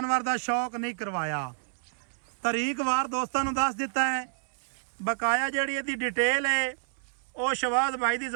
दा शौक नहीं करवाया। तरीक वार दोस्तां नूं दस दिता है। बकाया जिहड़ी इहदी डिटेल है वो शबाज भाई की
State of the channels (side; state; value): left; silent; 59 dB below the other